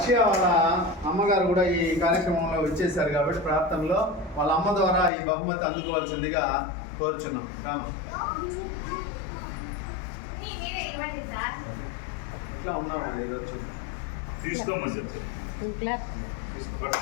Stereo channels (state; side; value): drops out; right; at 5.1 s